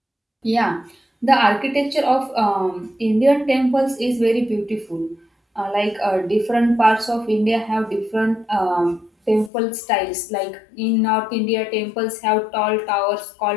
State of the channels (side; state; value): right; drops out; at 9.5 s